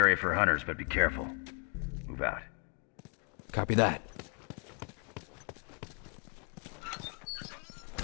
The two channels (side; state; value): right; quieter; 37.9 dB